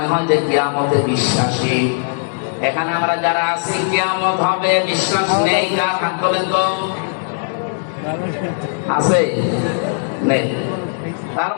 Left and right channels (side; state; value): right; silent; digital silence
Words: হয় যে কিয়ামতে বিশ্বাসী। এখানে আমরা যারা আছি কিয়ামত হবে বিশ্বাস নেই, কার হাত বলেন তো? আছে? নেই। তার